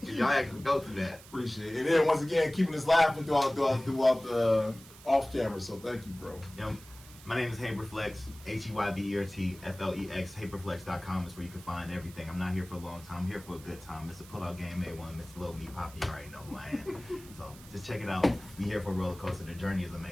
You know? Y'all actually go through that. Appreciate it. And then once again, keeping us laughing throughout the off camera. So thank you, bro. Yeah. My name is Heybert Flex, HEYBERT FLEX. HeybertFlex.com is where you can find everything. I'm not here for a long time. I'm here for a good time. It's a pull-out game A1. Mr. Lil Me Poppy, you already know who I am. So just check it out. Be here for a roller coaster. The journey is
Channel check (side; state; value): right; noise; hiss, 20 dB below the sound